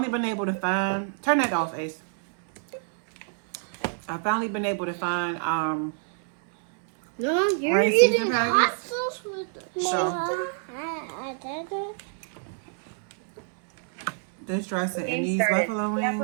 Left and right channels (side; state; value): left; silent; 61 dB below the other